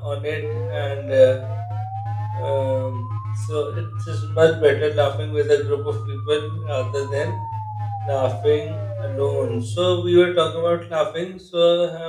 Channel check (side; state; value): both; identical; correlation 1.00